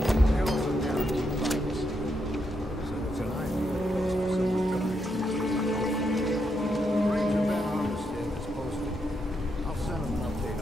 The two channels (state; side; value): normal; both; correlation 0.80